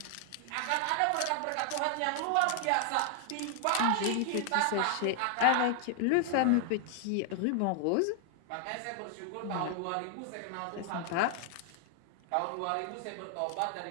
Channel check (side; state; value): both; different; correlation 0.00